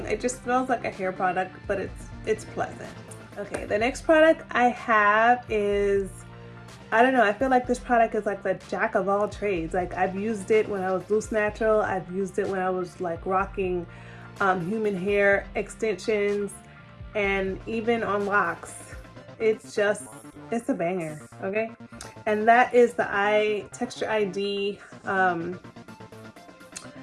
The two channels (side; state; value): both; identical; correlation 1.00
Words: It just smells like a hair product, but it's pleasant. Okay, the next product I have is, I don't know, I feel like this product is like the jack of all trades. Like, I've used it when I was loose natural. I've used it when I was like rocking human hair extensions, and even on locks. It's a banger, okay? And that is the Texture ID